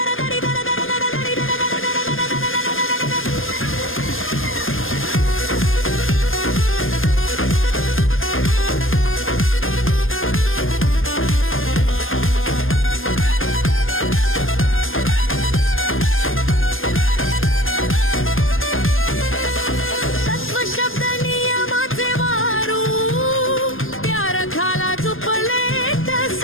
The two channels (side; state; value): right; late; 0.59 ms